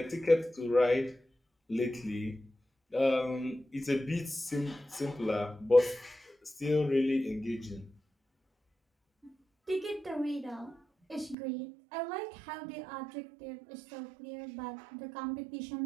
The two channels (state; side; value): drops out; left; at 11.4 s